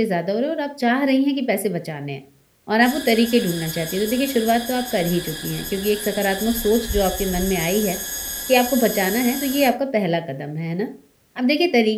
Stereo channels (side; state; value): both; identical; correlation 1.00